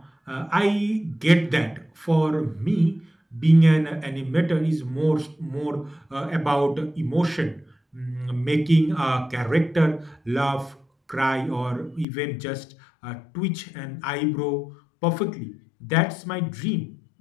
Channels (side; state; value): right; drops out; at 12.1 s